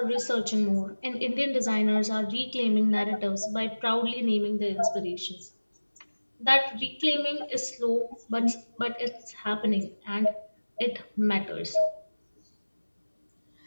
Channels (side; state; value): both; inverted; correlation -1.00